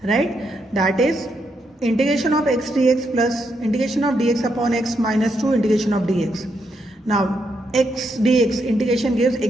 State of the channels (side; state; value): both; normal; correlation 0.79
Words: Right? That is integration of x dx plus integration of dx upon x minus 2 integration of dx. Now x dx integration gives